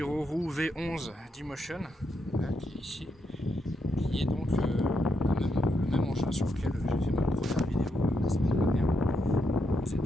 V11 d'Emotion, qui est ici, qui est donc le même engin sur lequel j'ai fait ma première vidéo la semaine dernière. C'est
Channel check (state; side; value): normal; both; correlation 0.81